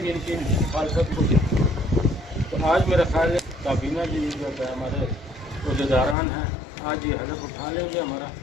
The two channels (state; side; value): drops out; right; at 6.2 s